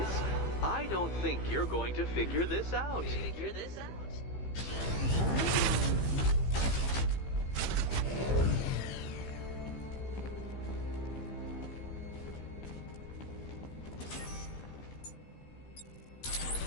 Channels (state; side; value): late; right; 15 ms